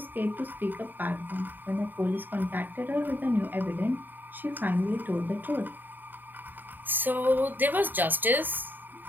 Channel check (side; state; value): left; late; 0.091 ms